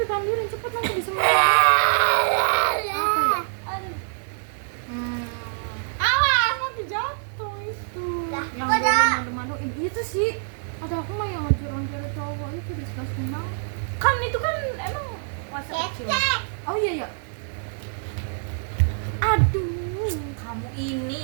ambilin cepet nanti disemutin. Apa ya? Aduh. Hmm, Awas, nanti jatuh itu. Lah, yang kok dah? malu-maluin itu sih. Ada aku mah yang ngajar-ngajar cowok itu disgusting banget. Kan itu kan emang masa kecil. Cek. Oh iya. Aduh, Kamu ini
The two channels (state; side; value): silent; left; digital silence